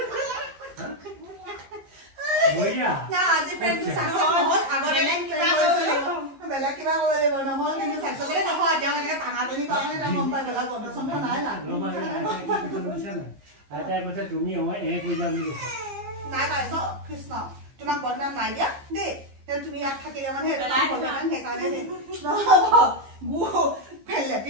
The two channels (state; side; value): late; left; 15 ms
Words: বইয়া না আজি প্রেম তো সাকসেস নহল আগতে প্রেম কৰিছিল বেলা কিবা কৰে নহল কিন্তু সাকসেস নহয় এতিয়া এনেকে টাঙাটনি কাৰণে এটা গম পাই গলা পদচন্দ নাই না আইতাই কৈছে তুমি হয় কইলা বুলি নাই নাই কৃষ্ণ তোমাক বদনাম নাই দিয়া দেই তুমি ইয়াত থাকিলে মানে বদনাম সেইকাৰণে দেই গু